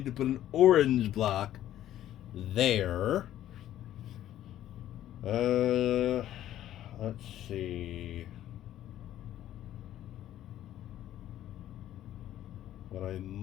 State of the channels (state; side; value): quieter; right; 12.5 dB